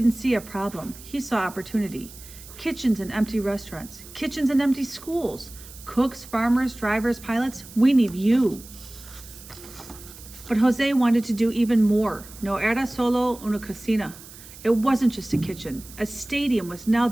see a problem. He saw opportunity. Kitchens and empty restaurants. Kitchens and empty schools. Cooks, farmers, drivers, pilots. We need you. But Jose wanted to do even more. No era solo una cocina. It wasn't just a kitchen. A stadium was now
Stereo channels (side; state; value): right; noise; hiss, 18 dB below the sound